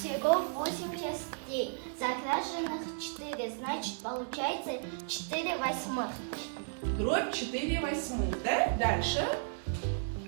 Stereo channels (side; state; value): left; silent; digital silence